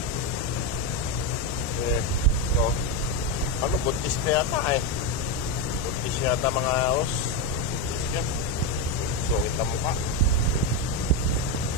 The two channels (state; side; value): noise; left; rumble, 14 dB below the sound